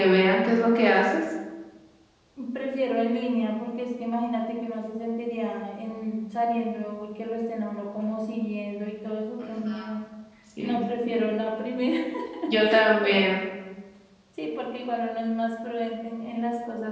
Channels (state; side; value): identical; both; correlation 1.00